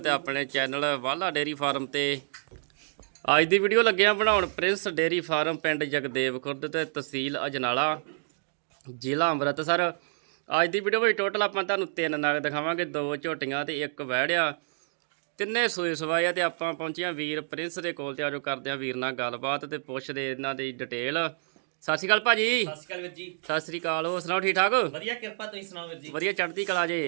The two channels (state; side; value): silent; left; digital silence